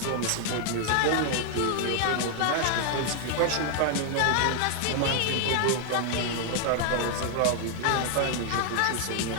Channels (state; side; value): different; both; correlation 0.00